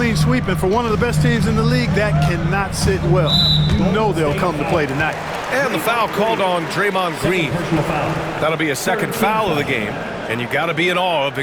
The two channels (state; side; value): identical; both; correlation 1.00